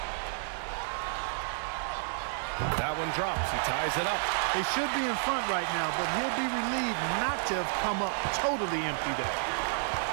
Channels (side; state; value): left; silent; digital silence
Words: That one drops. He ties it up. They should be in front right now, but he'll be relieved not to have come up totally empty there.